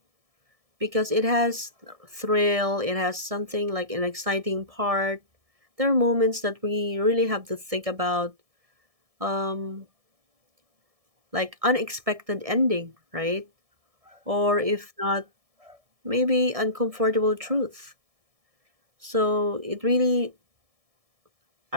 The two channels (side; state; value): left; late; 1.7 ms